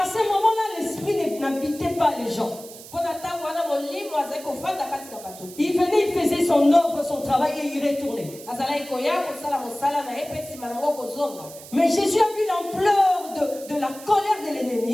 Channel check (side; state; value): right; noise; hiss, 16 dB below the sound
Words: ce moment-là, l'esprit n'habitait pas les gens. Il venait, il faisait son œuvre, son travail et il retournait. Mais Jésus a vu l'ampleur de la colère de